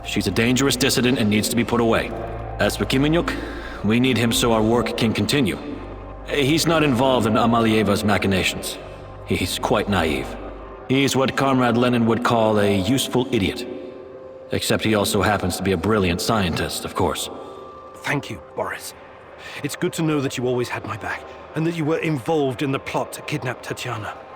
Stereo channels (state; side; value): identical; both; correlation 1.00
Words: She's a dangerous dissident and needs to be put away. As for Kiminyuk, we need him so our work can continue. He's not involved in Amalieva's machinations. He's quite naive. He's what Comrade Lenin would call a useful idiot. Except he also happens to be a brilliant scientist, of course. Thank you, Boris. It's good to know that you always had my back, and that you were involved in the plot to kidnap Tatiana.